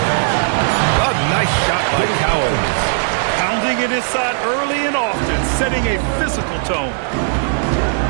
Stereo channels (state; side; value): silent; left; digital silence